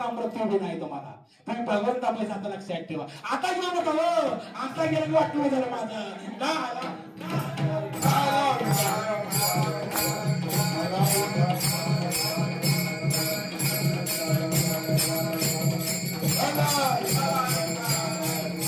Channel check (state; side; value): identical; both; correlation 1.00